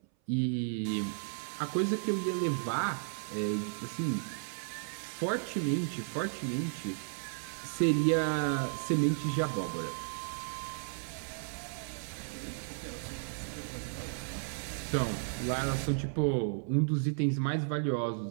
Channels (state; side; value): silent; left; 55 dB below the other